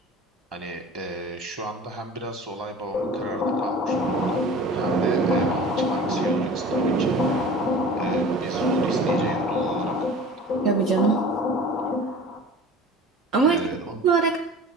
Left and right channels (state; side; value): normal; both; correlation 0.41